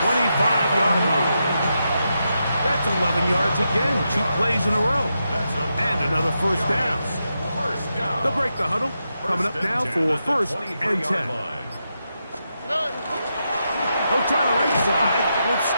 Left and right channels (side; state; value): both; inverted; correlation -0.85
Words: 25-yard line. That's 11 yards again, 2 plays in a row. And another first down. They'll break the huddle. Coming up now for 1st and 10. They'll try the right side with